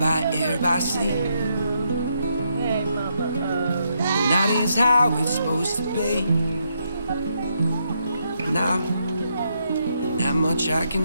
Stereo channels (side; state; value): both; inverted; correlation -0.78